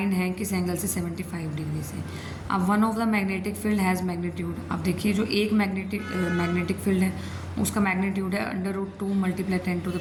हैं किस एंगल से, 75 डिग्री से। अब one of the magnetic field has magnitude. अब देखिए जो एक मैग्नेटिक फील्ड है उसका मैग्नीट्यूड है √2 ×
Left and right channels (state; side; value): identical; both; correlation 1.00